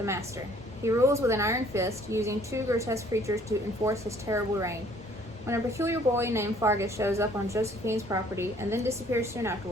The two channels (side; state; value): both; normal; correlation 0.58